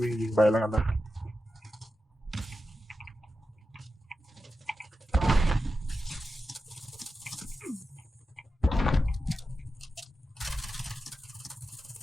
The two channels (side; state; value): both; normal; correlation 0.91